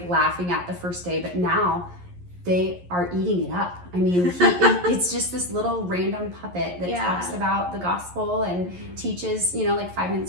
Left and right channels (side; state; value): left; late; 11 ms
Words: at the first day, but now they are eating it up. It's just this little random puppet that talks about the gospel and teaches, 5